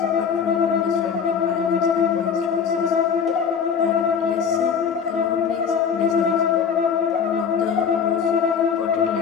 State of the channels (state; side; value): quieter; right; 6.8 dB